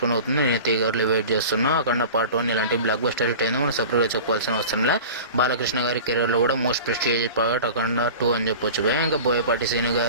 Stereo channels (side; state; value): both; inverted; correlation -0.36